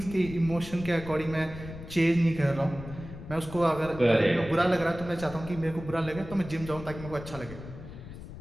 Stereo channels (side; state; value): left; noise; rumble, 13 dB below the sound